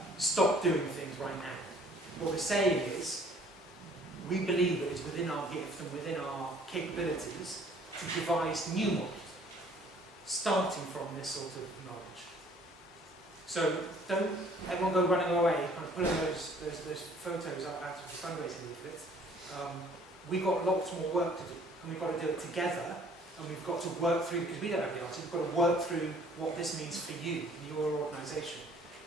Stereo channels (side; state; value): both; normal; correlation 0.56